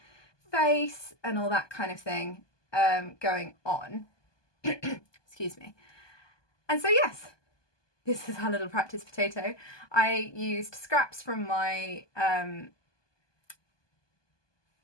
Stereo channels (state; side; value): late; right; 1.2 ms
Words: face and all that kind of thing going on. Excuse me. And so yes, this is our little practice potato. I used scraps from my